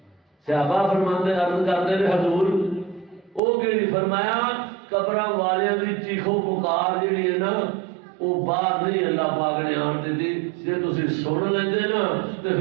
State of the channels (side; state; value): left; drops out; at 3.4 s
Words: صحابہ فرماندے عرض کردے نے حضور او کیڑی فرمایا قبراں والیاں دی چیخو پکار جڑی ہے نا وہ باہر نہیں اللہ پاک نے آن دیتی جے تسی سن لیندے نا تے